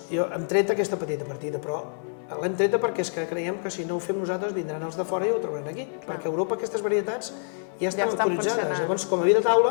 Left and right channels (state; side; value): silent; right; 61 dB below the other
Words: jo hem tret aquesta petita partida, però l'hem treta perquè és que creiem que si no ho fem nosaltres vindran els de fora i ho trobaran aquí, perquè a Europa aquestes varietats ja estan autoritzades. Llavors, com a vi de